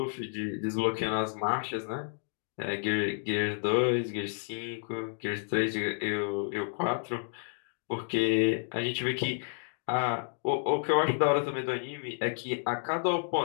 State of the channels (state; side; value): silent; right; digital silence